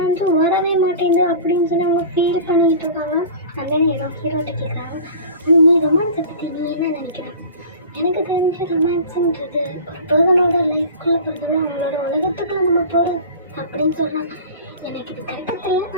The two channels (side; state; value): both; inverted; correlation -0.38